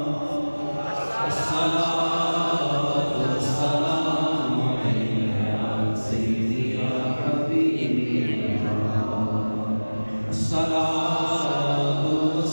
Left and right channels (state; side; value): inverted; both; correlation -1.00